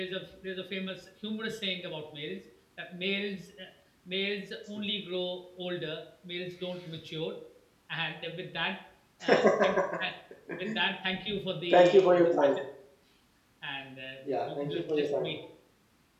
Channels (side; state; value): both; identical; correlation 1.00